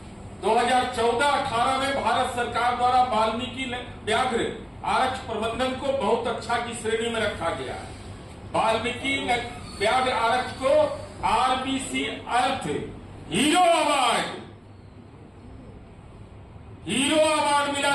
2014-18 में भारत सरकार द्वारा वाल्मीकि व्याघ्र आरक्ष प्रबंधन को बहुत अच्छा की श्रेणी में रखा गया। वाल्मीकि व्याघ्र आरक्ष को आरबीसी अर्थ हीरो अवार्ड मिला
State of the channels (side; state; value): both; identical; correlation 1.00